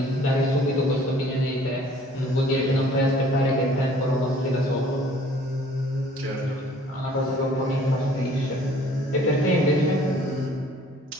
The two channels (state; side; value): normal; both; correlation 0.55